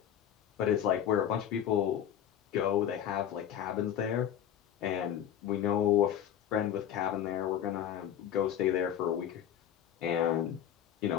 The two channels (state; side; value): quieter; right; 9.9 dB